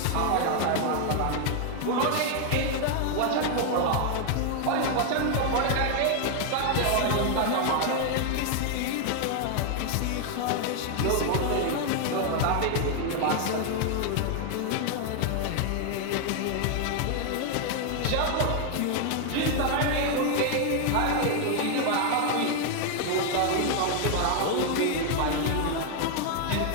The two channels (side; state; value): both; different; correlation 0.00